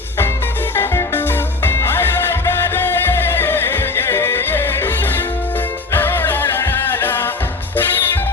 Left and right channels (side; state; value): right; quieter; 3.7 dB